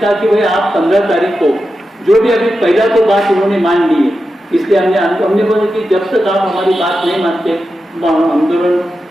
कि भाई आप 15 तारीख को जो भी, अभी पहला तो बात उन्होंने मान ली है, इसलिए हमने बोला कि जब तक आप हमारी बात नहीं मानते हम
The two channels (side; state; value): both; normal; correlation 0.90